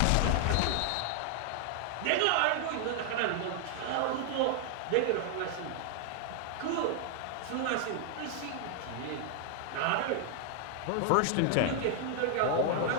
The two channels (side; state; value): both; different; correlation 0.00